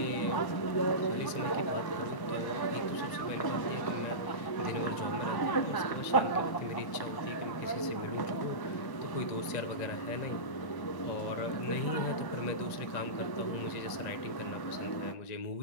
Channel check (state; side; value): late; right; 1.1 ms